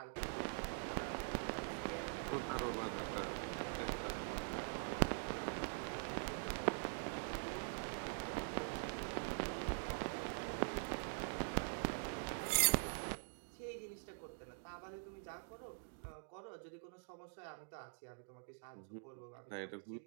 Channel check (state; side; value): silent; left; digital silence